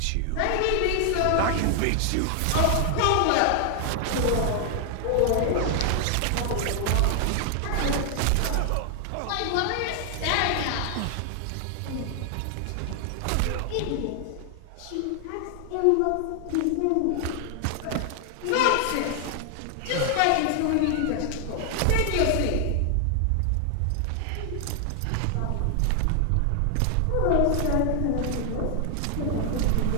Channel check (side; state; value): both; different; correlation 0.00